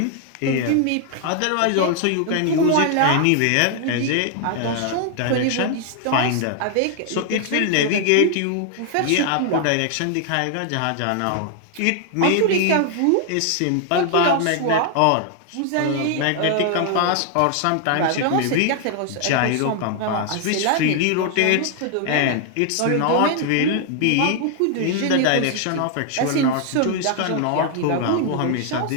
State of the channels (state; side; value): different; both; correlation 0.00